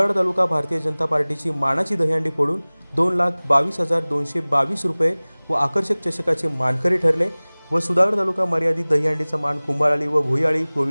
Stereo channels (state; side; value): inverted; both; correlation -1.00